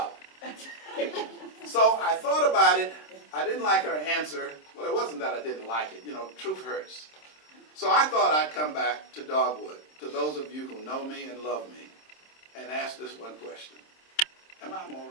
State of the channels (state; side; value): late; right; 26 ms